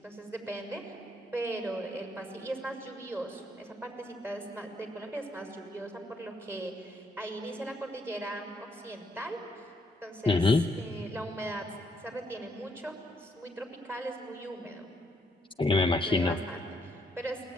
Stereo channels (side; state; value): both; normal; correlation 0.73